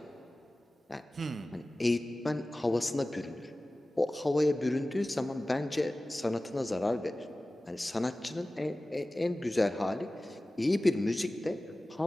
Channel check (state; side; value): normal; both; correlation 0.97